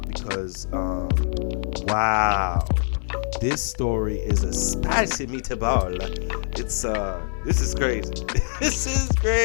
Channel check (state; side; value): silent; right; 57 dB below the other